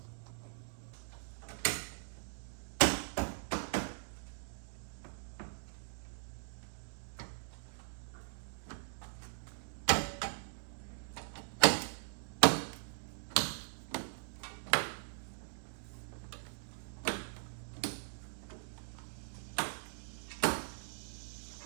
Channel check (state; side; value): silent; left; digital silence